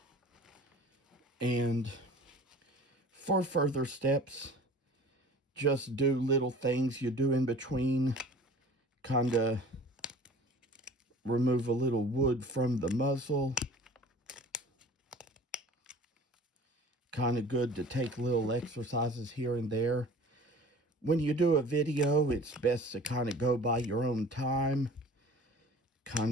And for further steps, just do little things you do in between. Kind of remove a little wood from the muzzle. Kind of good to take little exercises here and there. When you do a video, it's best to kind of go by your own time.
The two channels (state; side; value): normal; both; correlation 0.44